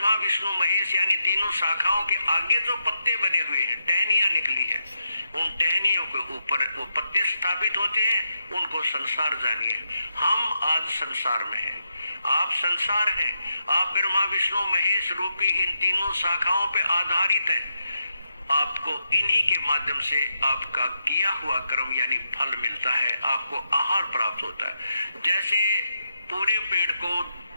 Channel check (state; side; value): inverted; both; correlation -0.83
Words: विष्णु महेश यानी तीनों शाखाओं के आगे जो पत्ते बने हुए हैं, टहनियां निकली है, उन टहनियों के ऊपर वो पत्ते स्थापित होते हैं, उनको संसार जानिए। हम आज संसार में हैं, आप संसार हैं, आप ब्रह्मा विष्णु महेश रूपी इन तीनों शाखाओं पे आधारित हैं। आपको इन्हीं के माध्यम से आपका किया हुआ कर्म यानी फल मिलता है, आपको आहार प्राप्त होता है। जैसे पूरे पेड़ को